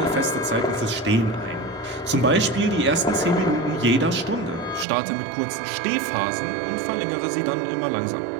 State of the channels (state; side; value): drops out; left; at 4.9 s